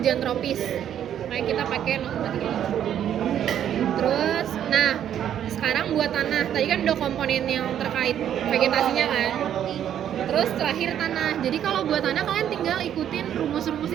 tropis. Kayak kita pakai 0,37. Terus, nah, sekarang buat tanah. Tadi kan udah komponen yang terkait vegetasinya kan. Terus terakhir tanah. Jadi kalau buat tanah kalian tinggal ikutin rumus-rumus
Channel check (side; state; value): left; quieter; 10.1 dB